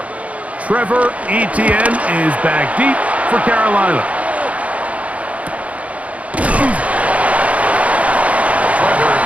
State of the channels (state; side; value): late; left; 0.066 ms